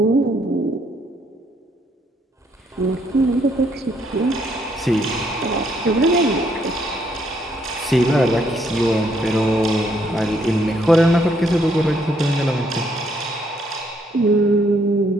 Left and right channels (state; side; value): normal; both; correlation 0.71